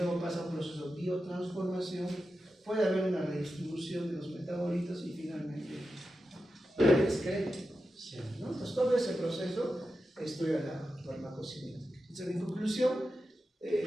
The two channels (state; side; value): normal; both; correlation 0.91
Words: pasa un proceso de biotransformación, puede haber una redistribución de los metabolitos y finalmente la excreción, ¿no? Entonces todo ese proceso estudia la farmacocinética. Entonces, en conclusión,